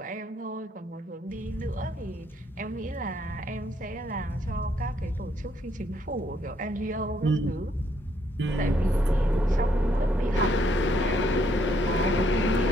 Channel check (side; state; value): both; normal; correlation 0.71